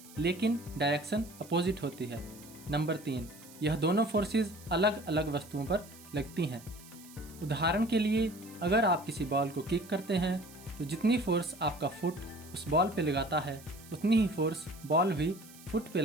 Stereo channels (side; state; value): right; noise; hiss, 20 dB below the sound